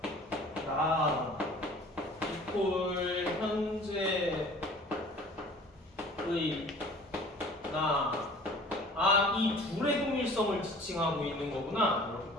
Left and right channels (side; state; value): both; normal; correlation 0.48